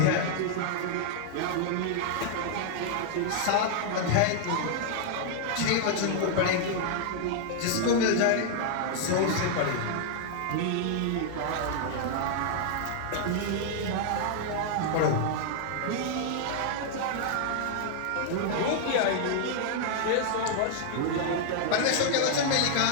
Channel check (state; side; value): different; both; correlation -0.01